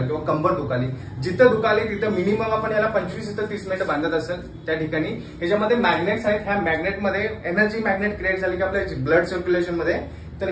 किंवा कंबर दुखाली, जिथं दुखाले तिथं मिनिमम आपण याला 25 ते 30 मिनिटं बांधत असेल त्या ठिकाणी ह्याच्यामध्ये मॅग्नेट्स आहेत. ह्या मॅग्नेटमध्ये एनर्जी मॅग्नेट क्रिएट झाली की आपल्या ब्लड सर्क्युलेशन मध्ये तर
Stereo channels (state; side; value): identical; both; correlation 1.00